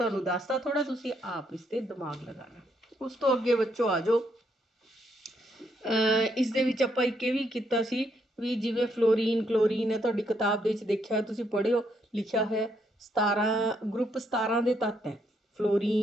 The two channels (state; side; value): normal; both; correlation 0.75